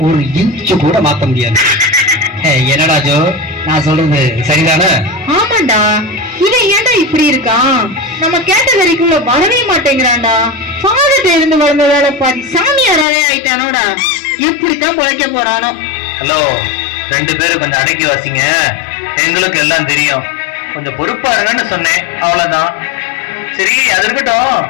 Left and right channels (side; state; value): right; drops out; at 13.1 s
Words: ஒரு இன்ச்சு கூட மாத்த முடியாது. என்னடா ஜோ, நான் சொல்றது சரிதானே? ஆமாண்டா, இவன் ஏன்டா இப்படி இருக்கான்? நம்ம கேட்டகரிக்குள்ள வரவே மாட்டேங்கிறான்டா. ஃபாதர்ட்ட இருந்து வளர்ந்த வேலை பாதி சாமியாராவே ஆயிட்டானோடா. எப்படித்தான் பொழைக்க போறானோ. ஹலோ, 2 பேரும் கொஞ்சம் அடக்கி வாசிங்க. எங்களுக்கு எல்லாம் தெரியும். கொஞ்சம் பொறுப்பா இருங்கன்னு சொன்னேன், அவ்வளவுதான். சரி, அது இருக்கட்டும்.